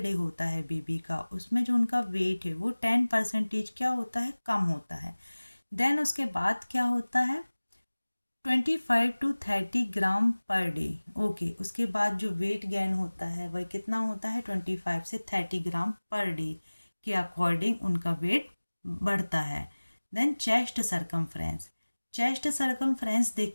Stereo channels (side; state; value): both; inverted; correlation -1.00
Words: होता है बेबी का, उसमें जो उनका वेट है वो 10% क्या होता है, कम होता है। देन उसके बाद क्या होता है, 25 to 30 gram per day. Okay, उसके बाद जो वेट गेन होता है वह कितना होता है, 25 से 30 ग्राम पर डे के अकॉर्डिंग उनका वेट बढ़ता है। Then chest circumference. Chest circumference